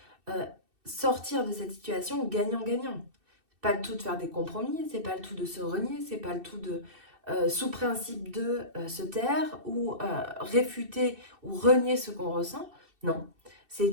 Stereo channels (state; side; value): late; left; 2.6 ms